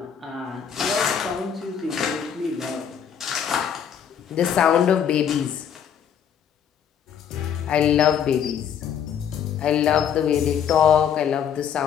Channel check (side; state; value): right; quieter; 8.3 dB